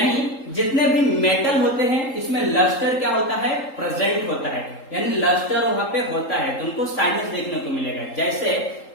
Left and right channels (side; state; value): right; late; 3.8 ms